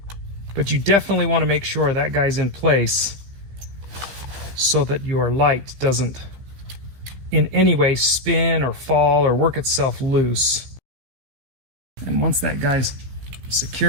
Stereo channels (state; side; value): late; left; 16 ms